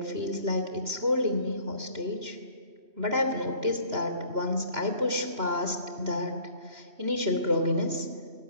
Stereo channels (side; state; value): left; late; 2.9 ms